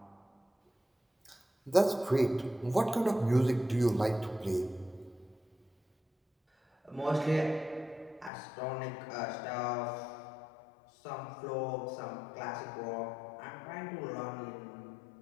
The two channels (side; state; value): right; drops out; at 8.3 s